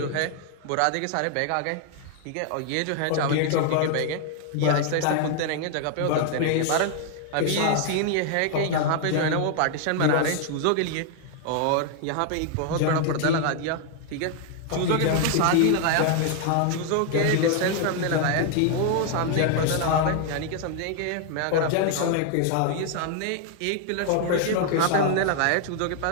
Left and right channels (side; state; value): both; different; correlation 0.00